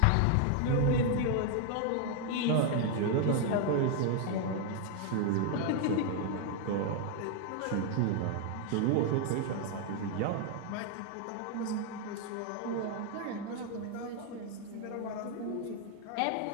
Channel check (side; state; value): both; different; correlation 0.01